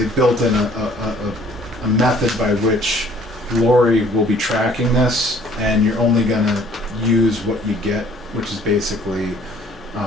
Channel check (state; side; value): normal; both; correlation 0.57